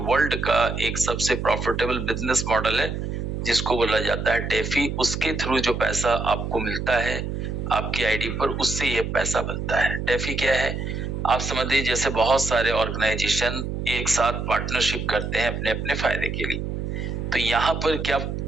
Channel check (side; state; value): right; noise; hum, 4 dB below the sound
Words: का एक सबसे प्रॉफिटेबल बिजनेस मॉडल है, जिसको बोला जाता है डेफी। उसके थ्रू जो पैसा आपको मिलता है आपकी आईडी पर, उससे ये पैसा बनता है। डेफी क्या है, आप समझ लीजिए जैसे बहुत सारे ऑर्गेनाइजेशन एक साथ पार्टनरशिप करते हैं अपने अपने फायदे के लिए। तो यहाँ पर क्या